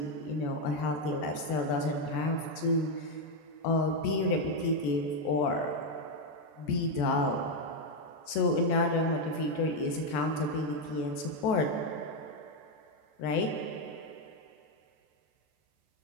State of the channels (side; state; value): right; late; 14 ms